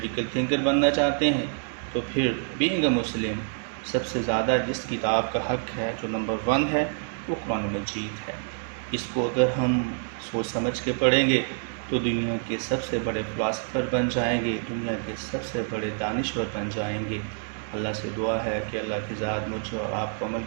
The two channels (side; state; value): left; silent; 60 dB below the other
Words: تھنکر بننا چاہتے ہیں تو پھر بینگ اے مسلم سب سے زیادہ جس کتاب کا حق ہے، جو نمبر 1 ہے، وہ قرآن مجید ہے۔ اس کو اگر ہم سوچ سمجھ کے پڑھیں گے تو دنیا کے سب سے بڑے فلاسفر بن جائیں گے، دنیا کے سب سے بڑے دانشور بن جائیں گے۔ اللہ سے دعا ہے کہ اللہ کی ذات مجھے اور آپ کو عمل